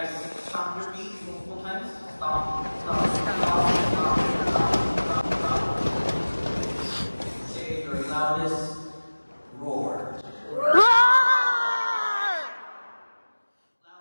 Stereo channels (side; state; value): both; inverted; correlation -1.00